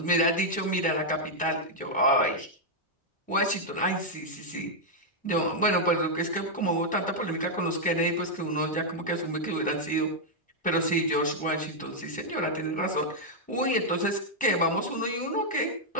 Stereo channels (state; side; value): normal; both; correlation -0.04